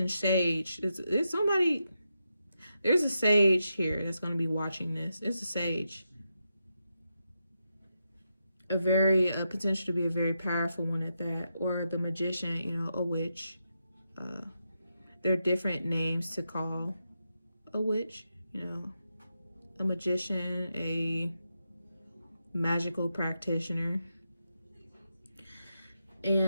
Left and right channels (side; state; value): both; inverted; correlation -0.86